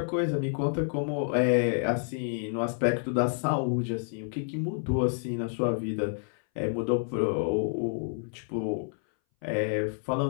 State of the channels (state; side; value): silent; right; 59 dB below the other